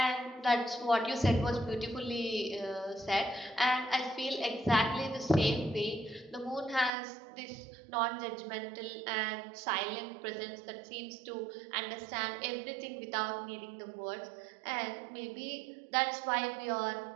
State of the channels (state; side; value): drops out; left; at 6.9 s